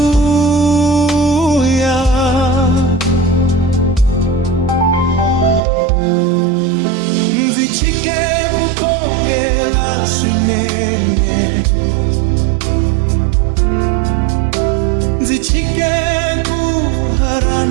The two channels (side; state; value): left; drops out; at 5.6 s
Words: Nzichike kukongela swinene, nzichike